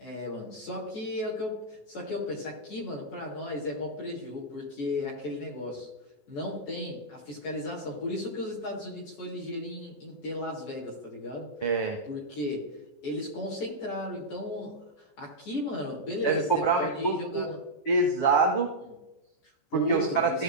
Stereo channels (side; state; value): right; late; 14 ms